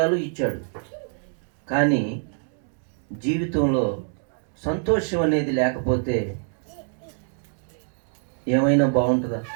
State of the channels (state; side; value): silent; left; 57 dB below the other